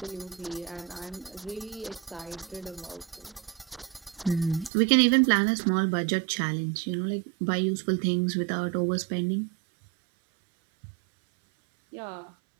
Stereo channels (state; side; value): drops out; left; at 4.7 s